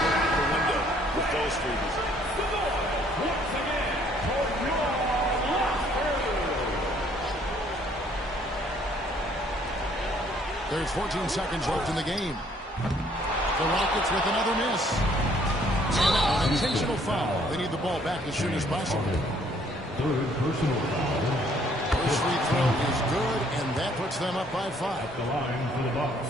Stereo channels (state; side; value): normal; both; correlation 0.63